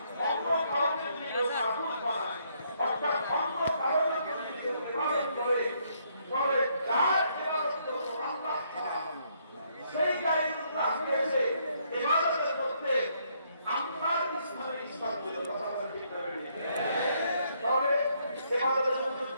অন্য কাউকে যদি মাবুদ বানায়, অর্থাৎ অন্য কাউকে যদি ইবাদত করে, তবে যার ইবাদত করবো আল্লাহ ছাড়া সেই গায়রুল্লাহকে এসে ইবাদতের মধ্যে আল্লাহর ইসলামের ইসলাম দিল। কথা বলেন ঠিক না? তবে ইবাদতের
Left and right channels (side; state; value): both; inverted; correlation -0.71